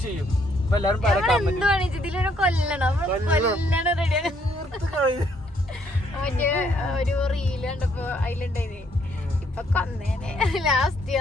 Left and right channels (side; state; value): both; normal; correlation 0.69